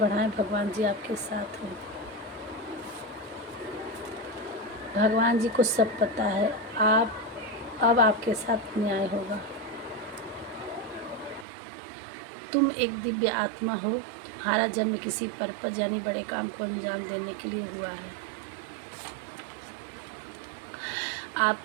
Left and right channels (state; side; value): drops out; left; at 11.5 s